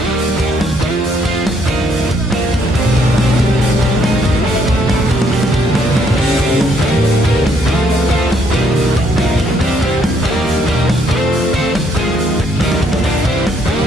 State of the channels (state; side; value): normal; both; correlation 0.69